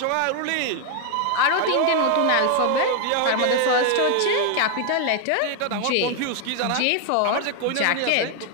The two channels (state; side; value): different; both; correlation 0.00